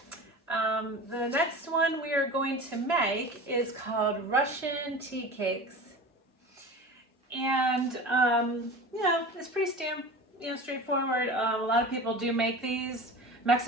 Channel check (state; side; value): normal; both; correlation 0.34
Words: The next one we are going to make is called Russian tea cakes. And, it's pretty straightforward. A lot of people do make these.